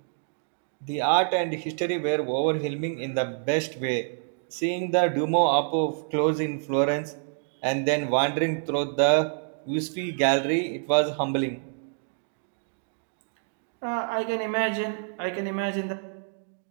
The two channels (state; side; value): silent; left; digital silence